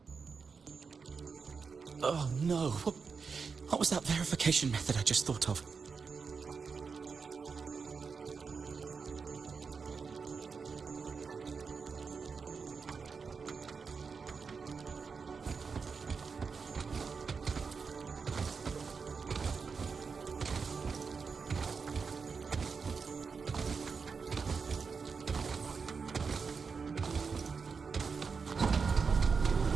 Oh no, what was that verification method I just thought of?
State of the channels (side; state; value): left; quieter; 5.3 dB